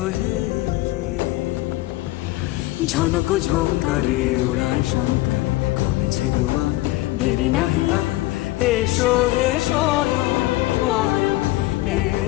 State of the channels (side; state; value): right; quieter; 18.2 dB